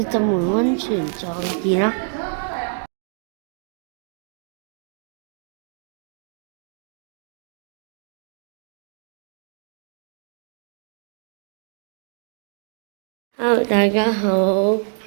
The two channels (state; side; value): silent; left; 57 dB below the other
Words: 浸完温泉再見啦。Hello，大家好。